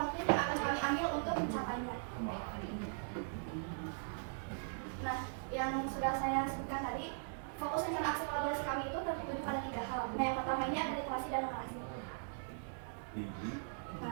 yang akan kami ambil untuk mencapainya. Nah, yang sudah saya sebutkan tadi, fokus rencana aksi kolaborasi kami itu tertuju pada 3 hal. Nah, yang pertama ini ada literasi dan numerasi.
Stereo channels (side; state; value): left; silent; digital silence